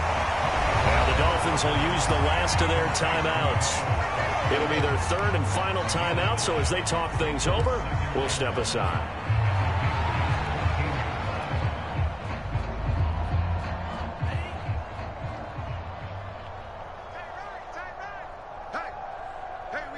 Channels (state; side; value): identical; both; correlation 1.00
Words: Now the Dolphins will use the last of their timeouts. It'll be their third and final timeout, so as they talk things over, we'll step aside.